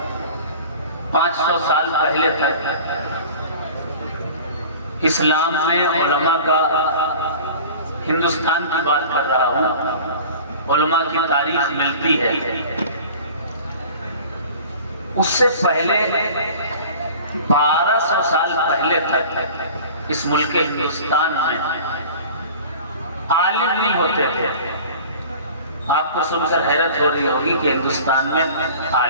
500 سال پہلے تک اسلام میں علماء کا، ہندوستان کی بات کر رہا ہوں، علماء کی تاریخ ملتی ہے۔ اس سے پہلے 1200 سال پہلے تک اس ملک ہندوستان میں عالم نہیں ہوتے تھے۔ آپ کو سن کر حیرت ہو رہی ہوگی کہ ہندوستان میں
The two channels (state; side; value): inverted; both; correlation -0.42